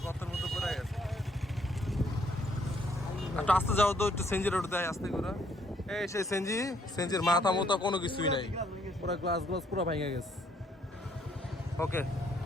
গর্তের মধ্যে পড়ে গেছে। একটু আস্তে যাও তো, একটু সেঞ্জির ওটা দেয় আস্তে করে। এই সেই সেঞ্জির মাথা মতো কোনো কিছুই নাই, পুরো গ্লাস পুরো ভেঙে গেছে। ওকে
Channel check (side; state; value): both; normal; correlation 0.68